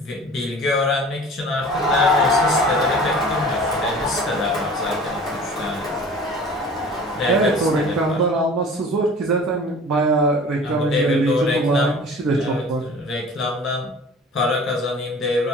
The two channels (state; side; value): normal; both; correlation 0.43